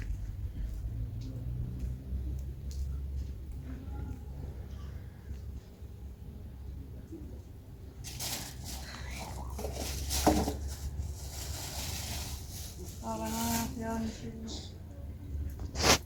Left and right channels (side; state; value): both; identical; correlation 1.00